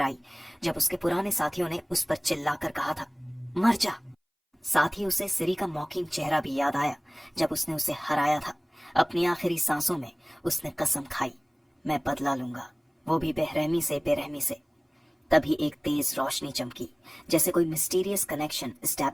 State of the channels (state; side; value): identical; both; correlation 1.00